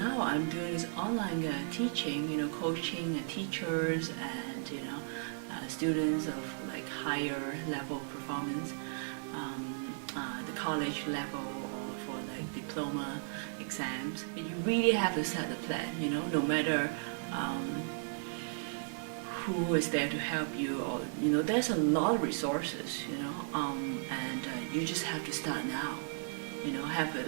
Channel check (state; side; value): silent; left; 54 dB below the other